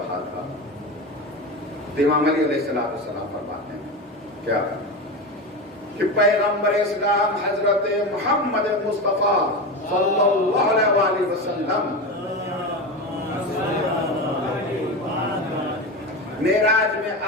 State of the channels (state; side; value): normal; both; correlation 0.22